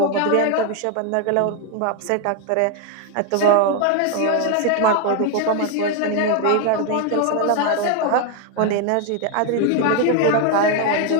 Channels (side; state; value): both; different; correlation 0.01